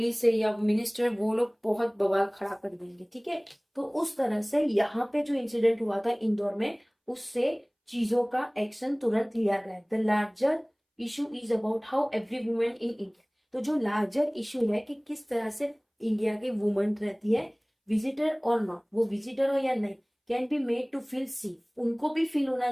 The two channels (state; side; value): identical; both; correlation 1.00